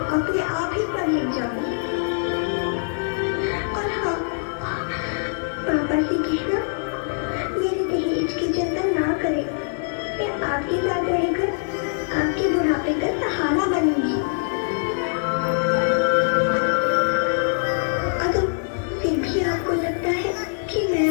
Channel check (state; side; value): silent; right; digital silence